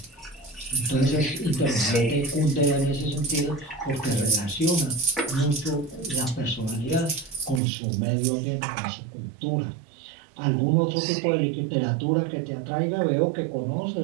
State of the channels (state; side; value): drops out; left; at 7.6 s